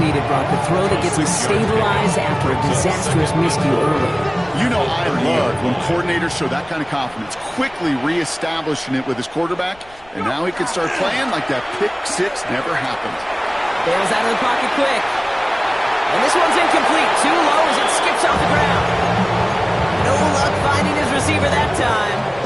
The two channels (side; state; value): left; noise; rumble, 27 dB below the sound